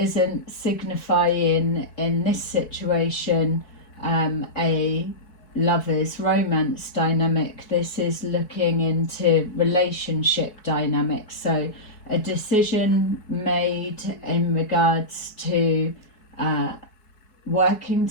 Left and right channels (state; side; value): late; right; 4.7 ms